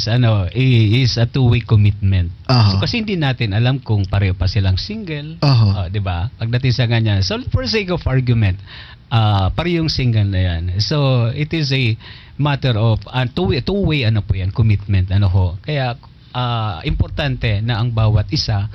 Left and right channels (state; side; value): identical; both; correlation 1.00